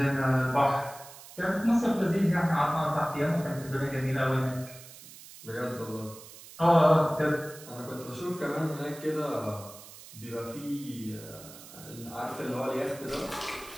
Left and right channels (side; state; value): right; noise; hiss, 17 dB below the sound